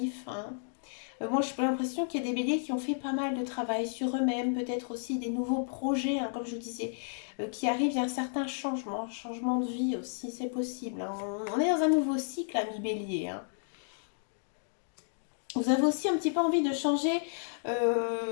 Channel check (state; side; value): silent; right; digital silence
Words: Moi, j'ai l'impression qu'il y a des béliers qui ont fait pas mal de travail sur eux-mêmes, peut-être aussi des nouveaux projets, comme je vous disais, qui arrivent. Il y a un certain changement de vie aussi, c'est possible. On est dans un nouveau cycle, ami bélier. Vous avez aussi un petit peu envie de changer